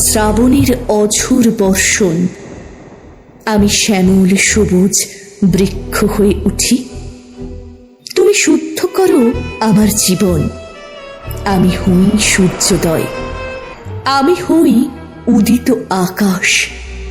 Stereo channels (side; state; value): both; identical; correlation 1.00